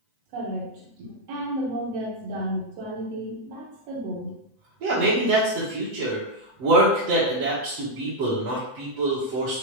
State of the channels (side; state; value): left; late; 7.9 ms